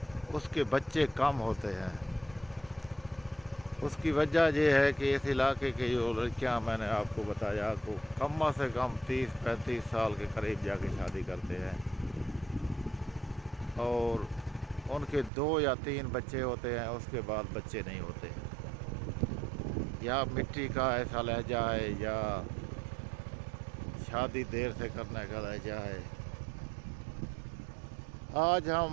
उसके बच्चे कम होते हैं। उसकी वजह यह है कि इस इलाके की जो लड़कियां, मैंने आपको बताया, तो कम से कम 30-35 साल के करीब जाके शादी करते हैं और उनके 2 या 3 बच्चे होते हैं, उसके बाद बच्चे नहीं होते। या मिट्टी का ऐसा लहजा है या शादी देर से करने का लहजा है। आज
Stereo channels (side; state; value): left; drops out; at 15.3 s